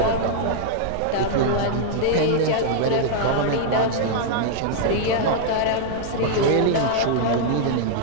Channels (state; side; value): different; both; correlation -0.01